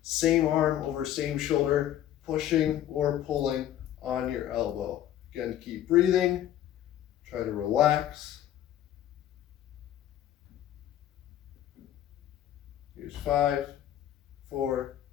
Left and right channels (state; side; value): quieter; right; 11.8 dB